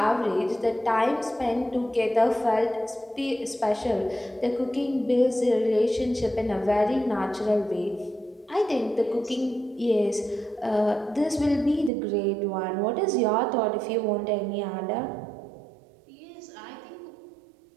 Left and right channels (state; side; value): drops out; left; at 11.9 s